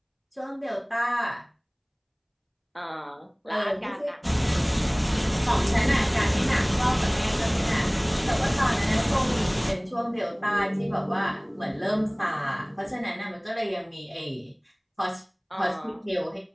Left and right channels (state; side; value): identical; both; correlation 1.00